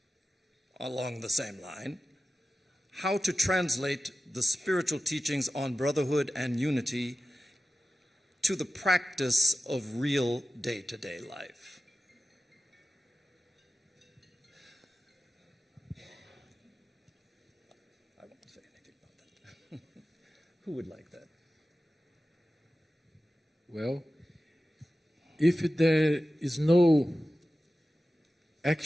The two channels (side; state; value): both; normal; correlation 0.95